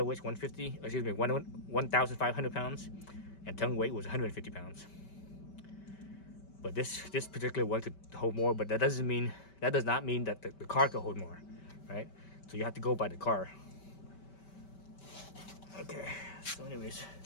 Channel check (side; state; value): right; late; 5.2 ms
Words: weight 1,500 pounds, and tongue weight was 150 pounds. But this particular one could hold more, but that does not mean that the car could hold more, right? So you have to go by the car. Okay, so anyways,